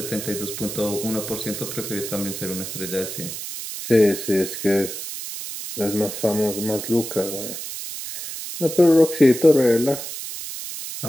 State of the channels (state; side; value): noise; right; hiss, 8 dB below the sound